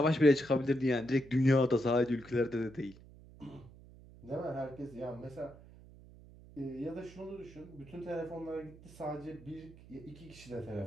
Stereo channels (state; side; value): noise; right; hum, 20 dB below the sound